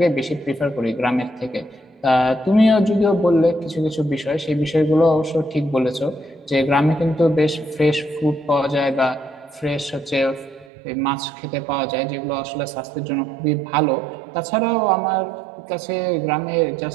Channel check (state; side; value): drops out; left; at 10.7 s